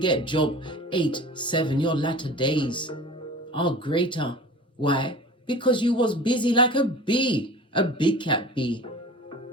Job 8:7. Your latter days are greater. Why? Because you was busy like a bee, a big cat bee.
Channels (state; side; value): normal; both; correlation 0.39